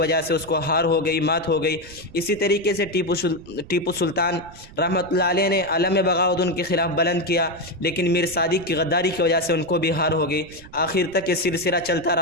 سے اس کو ہار ہو گئی، مات ہو گئی۔ اسی طریقے سے ٹیپو سلطان رحمۃ اللہ علیہ نے علم بغاوت ان کے خلاف بلند کیا، لیکن میر صادق کی غداری کی وجہ سے ان کو بھی ہار ہو گئی۔ آخر تک یہ سلسلہ چلتا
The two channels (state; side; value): noise; right; rumble, 20 dB below the sound